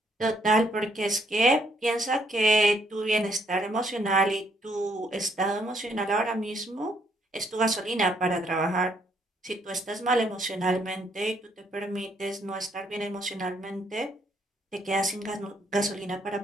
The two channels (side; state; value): both; normal; correlation 0.70